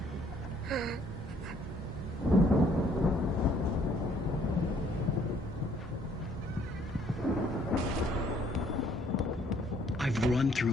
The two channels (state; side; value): normal; both; correlation 0.63